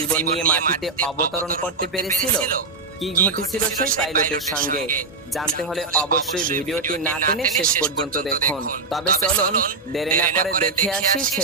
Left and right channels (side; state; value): left; quieter; 3.9 dB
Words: নিয়ে মাটিতে অবতরণ করতে পেরেছিল? কি ঘটেছিল সেই পাইলটের সঙ্গে জানতে হলে অবশ্যই ভিডিওটি না টেনে শেষ পর্যন্ত দেখুন। তবে চলুন দেরি না করে দেখে আসি